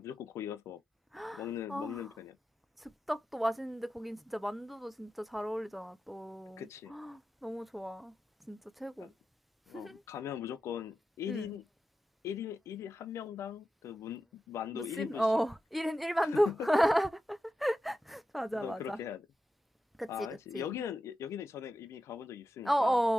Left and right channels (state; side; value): normal; both; correlation 0.90